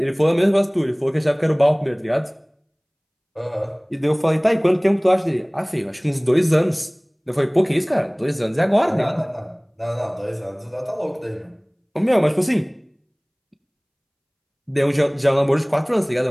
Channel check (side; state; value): both; identical; correlation 1.00